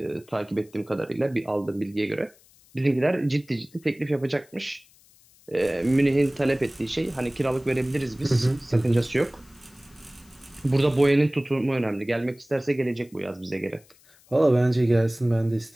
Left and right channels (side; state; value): left; noise; hiss, 29 dB below the sound